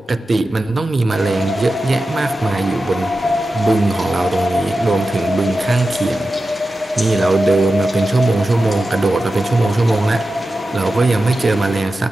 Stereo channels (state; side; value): normal; both; correlation 0.92